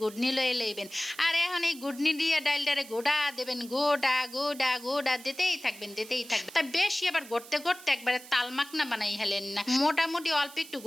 লয়ে লইবেন আর এখন এই গুডনি দিয়ে ডাইলটারে গোড়া দেবেন গোডা গোডা গোডা দিতেই থাকবেন তা বেশি আবার গড়তে গড়তে একবারে তালমাকনা বানাই হেলেন না মোটামুটি অল্প একটু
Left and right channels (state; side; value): noise; right; hiss, 18 dB below the sound